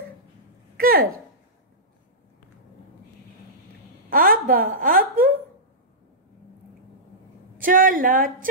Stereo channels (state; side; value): normal; both; correlation -0.15